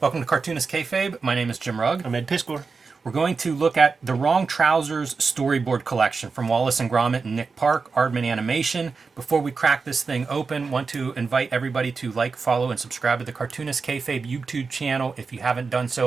Welcome to Cartoonist Kayfabe. My name is Jim Rugg. I'm Ed Piscor. We're going to look at the Wrong Trousers storyboard collection from Wallace and Gromit and Nick Park, Aardman Animation. Before we crack this thing open, want to invite everybody to like, follow, and subscribe to the Cartoonist Kayfabe YouTube channel if you haven't done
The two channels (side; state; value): left; quieter; 4.7 dB